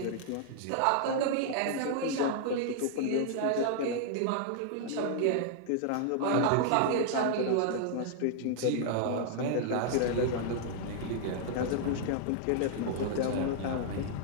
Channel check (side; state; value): both; different; correlation -0.01